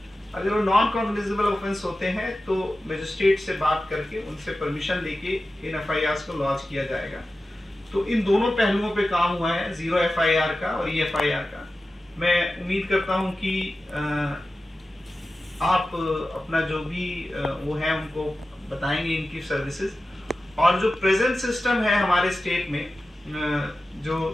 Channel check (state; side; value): normal; both; correlation 0.94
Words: अगर वो नॉन कॉग्निजेबल ऑफेंस होते हैं तो मजिस्ट्रेट से बात करके उनसे परमिशन लेके इन एफआईआर को लॉन्च किया जाएगा। तो इन दोनों पहलुओं पे काम हुआ है, जीरो एफआईआर का और ईएफआईआर का। मैं उम्मीद करता हूं कि आप अपना जो भी वो है उनको बताएंगे इनकी सर्विसेज। और जो प्रेजेंट सिस्टम है हमारे स्टेट में,